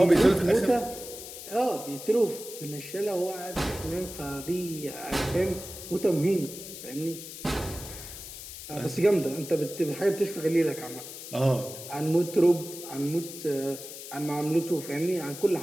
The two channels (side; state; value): left; noise; hiss, 12 dB below the sound